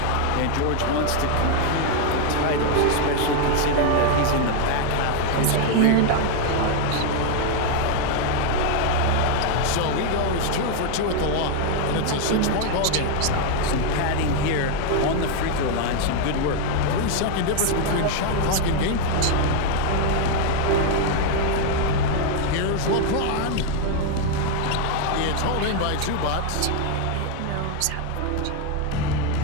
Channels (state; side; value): different; both; correlation 0.01